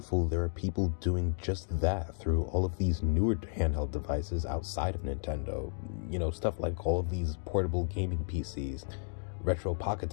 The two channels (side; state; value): right; silent; digital silence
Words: there are people doing just that through all of these newer handheld devices outside of Nintendo. You know, stuff like all of these portable gaming PCs, retro pocket